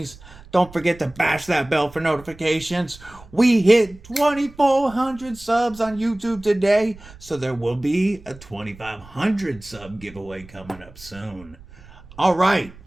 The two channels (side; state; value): right; noise; rumble, 21 dB below the sound